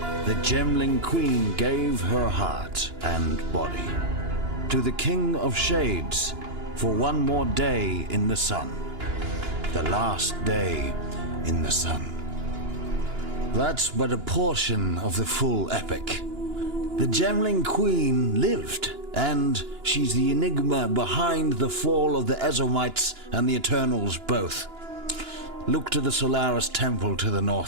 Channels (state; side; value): late; left; 2.9 ms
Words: the Gemling Queen gave her heart and body to the King of Shades for one more day in the sun. The last day in the sun. That's but a portion of the full epic. The Gemling Queen lived, and she's the enigma behind the fall of the Ezomites and the Eternals both. Look to the Solaris Temple to the